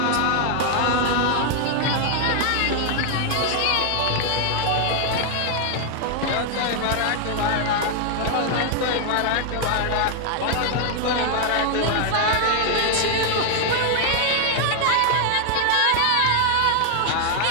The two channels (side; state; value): both; different; correlation 0.00